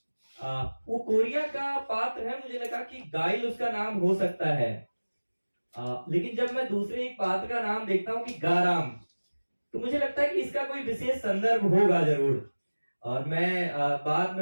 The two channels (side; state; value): both; inverted; correlation -1.00